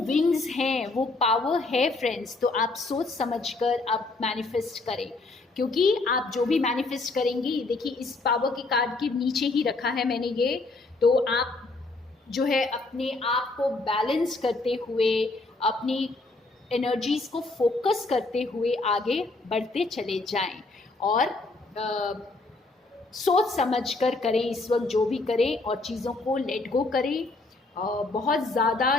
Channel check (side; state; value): right; quieter; 3.3 dB